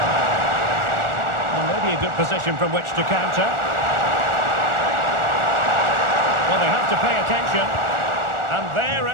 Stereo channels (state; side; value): late; left; 1.4 ms